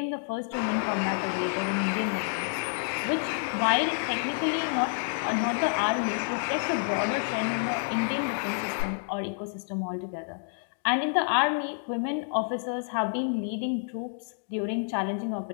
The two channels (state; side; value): silent; right; digital silence